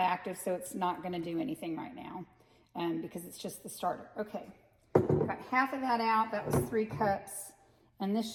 active, so it's not going to do anything right now because it's just the starter. Okay, got half of that out. That was 3 cups, and this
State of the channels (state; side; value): identical; both; correlation 1.00